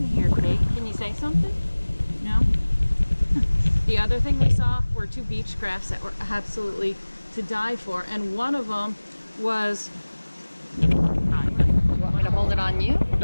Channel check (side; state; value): both; inverted; correlation -1.00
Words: here, Kate. Can you say something? No? The other thing we saw were two beach crafts that were absolutely to die for, and one of them was, you want me to hold it on you?